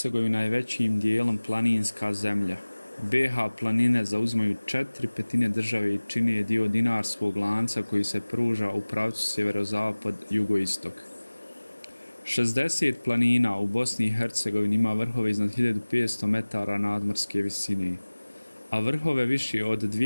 je većim dijelom planinska zemlja. BiH planine zauzimaju 4/5 države i čine je dio dinarskog lanca koji se pruža u pravcu sjeverozapad-jugoistok. 60 planina u Bosni i Hercegovini ima vrhove iznad 1500 metara nadmorske visine, a vrhove više od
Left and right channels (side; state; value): both; inverted; correlation -1.00